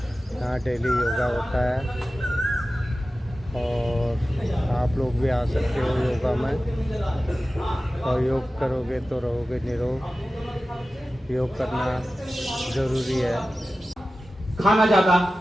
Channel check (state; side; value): normal; both; correlation 0.95